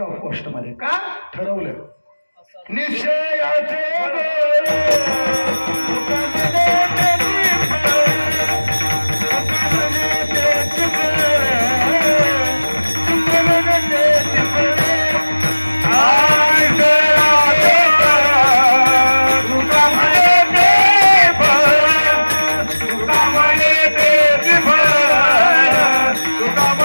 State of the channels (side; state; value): both; inverted; correlation -1.00